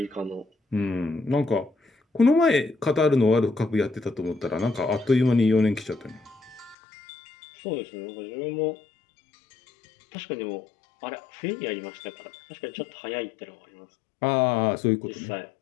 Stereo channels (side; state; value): right; drops out; at 6.8 s